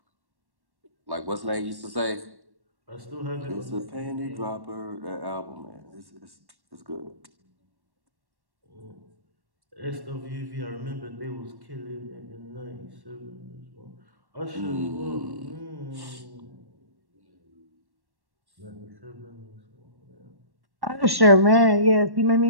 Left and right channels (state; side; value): late; left; 1.1 ms